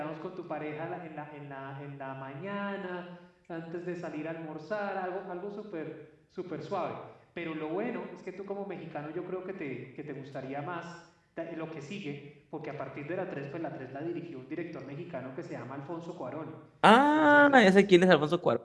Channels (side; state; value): both; identical; correlation 1.00